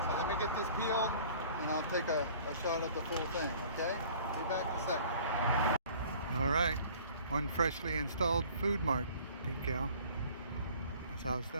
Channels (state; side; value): inverted; both; correlation -0.50